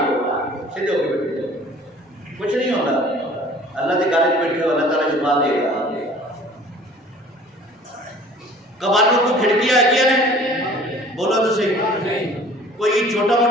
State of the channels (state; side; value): normal; both; correlation 0.49